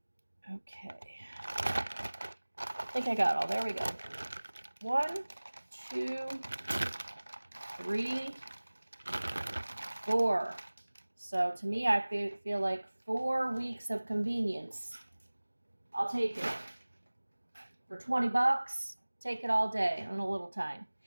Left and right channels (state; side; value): inverted; both; correlation -1.00